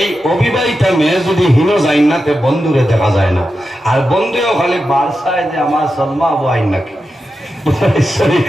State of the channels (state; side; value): normal; both; correlation 0.90